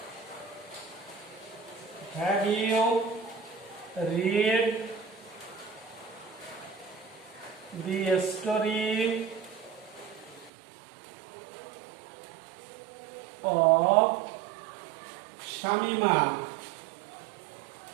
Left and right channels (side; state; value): left; drops out; at 10.5 s